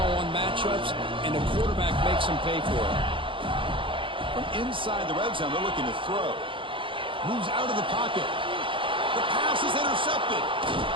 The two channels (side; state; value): left; late; 0.25 ms